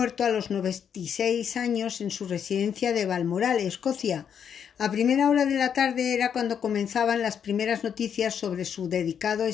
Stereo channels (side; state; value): right; quieter; 7.9 dB